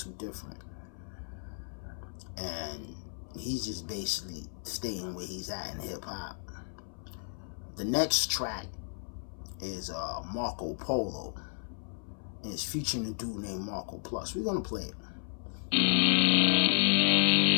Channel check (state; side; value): silent; right; 56 dB below the other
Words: Different. And he's just basically staying where he's at in hip hop. The next track is Marco Polo. And it's featuring a dude named Marco Plus. We're gonna play it.